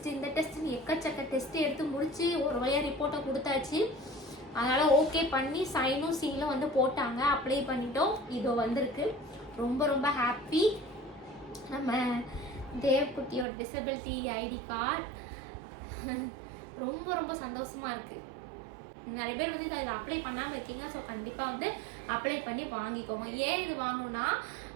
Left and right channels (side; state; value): left; drops out; at 13.5 s